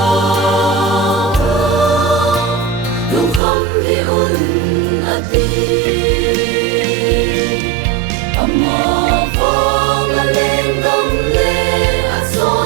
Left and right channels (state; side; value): drops out; left; at 3.4 s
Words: lung kham hi un ati ama phong a lên dam le a